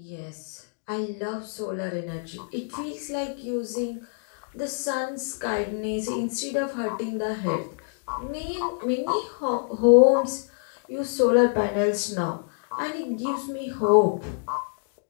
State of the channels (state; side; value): silent; right; digital silence